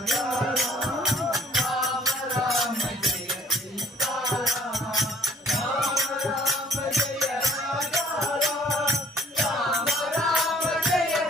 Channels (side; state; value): both; normal; correlation 0.57